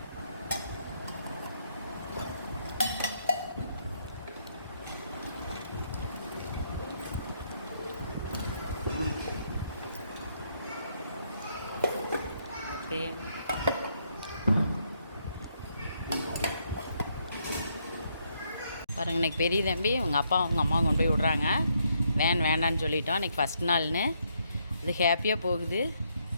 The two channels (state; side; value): inverted; both; correlation -0.74